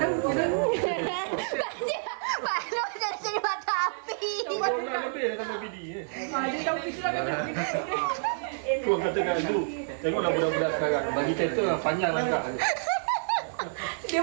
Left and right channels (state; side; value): silent; left; 59 dB below the other